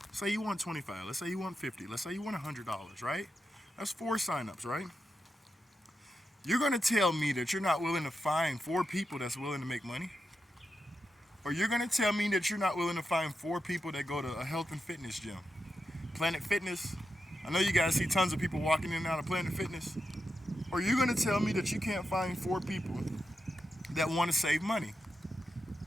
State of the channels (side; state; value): both; normal; correlation 0.88